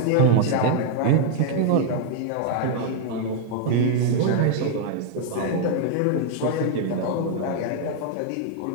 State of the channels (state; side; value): different; both; correlation 0.00